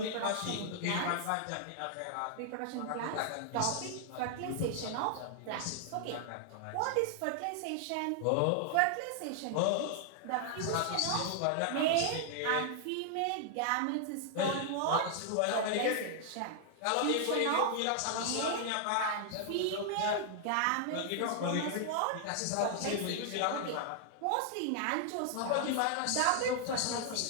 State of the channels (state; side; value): different; both; correlation 0.00